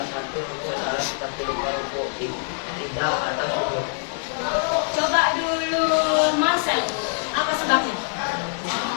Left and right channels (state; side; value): silent; right; digital silence